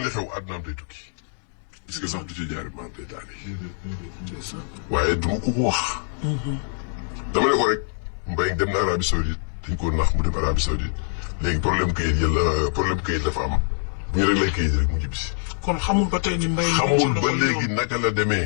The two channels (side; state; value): right; silent; digital silence